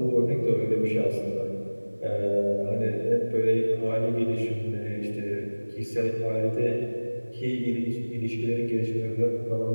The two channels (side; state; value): both; inverted; correlation -1.00